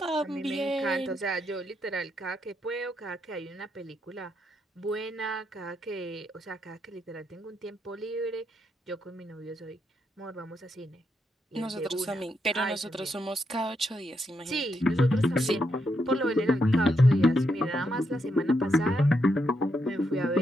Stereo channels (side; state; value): both; normal; correlation 0.80